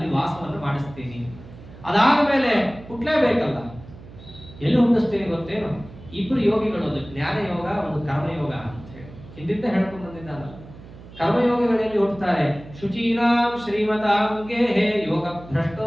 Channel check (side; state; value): right; noise; hum, 18 dB below the sound